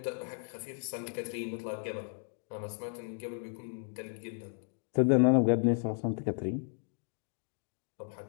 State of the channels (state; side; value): silent; right; 55 dB below the other